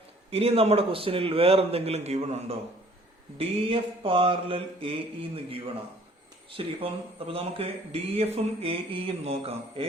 ഇനി നമ്മുടെ ക്വസ്റ്റ്യനിൽ വേറെ എന്തെങ്കിലും ഗിവൺ ഉണ്ടോ? D F parallel A E എന്ന് ഗിവണാ. ശരി, അപ്പൊ നമുക്ക് ഡി എഫും എ ഇയും നോക്കാം.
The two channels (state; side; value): normal; both; correlation 0.55